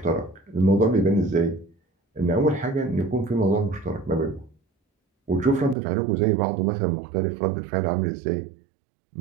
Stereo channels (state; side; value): drops out; left; at 5.8 s